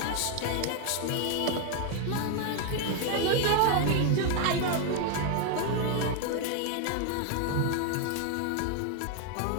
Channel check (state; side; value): different; both; correlation 0.01